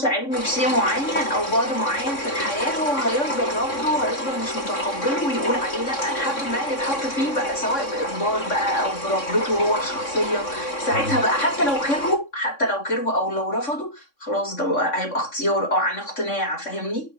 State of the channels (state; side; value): late; right; 3.6 ms